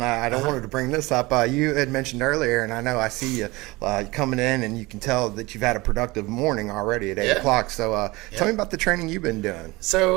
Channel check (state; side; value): quieter; left; 22.2 dB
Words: I don't wanted to bring this up. You had mentioned earlier, and I know I see you coming in, and you can tell that you've had a productive morning already at 8 o'clock. So tell me about the training you've been doing.